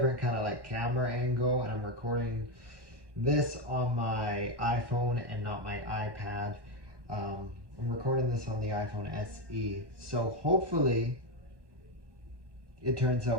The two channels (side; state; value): left; late; 1.1 ms